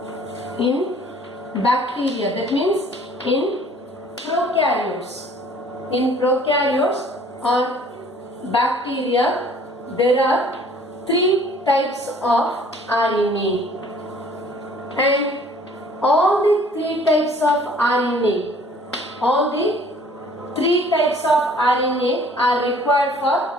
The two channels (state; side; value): normal; both; correlation 0.54